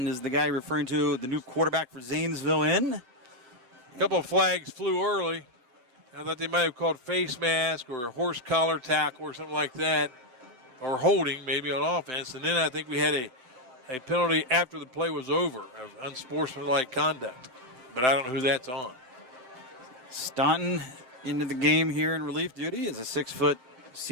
is the guy referring to the new quarterback for Zanesville in. A couple of flags flew early. I thought they might have called face mask or a horse collar tackle or something like that, or holding maybe on offense. And then I think we had a penalty after the play was over of unsportsmanlike conduct. But I don't know who that's on. Staunton into the game here in relief duty as a 6-foot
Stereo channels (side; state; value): left; late; 7.9 ms